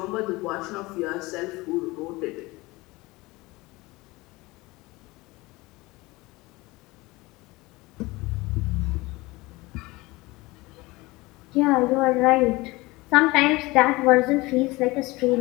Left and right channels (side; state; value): right; quieter; 21.8 dB